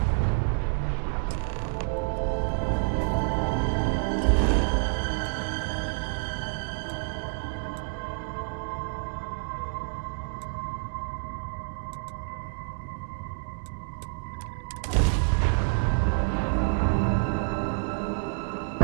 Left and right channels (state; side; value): silent; left; 59 dB below the other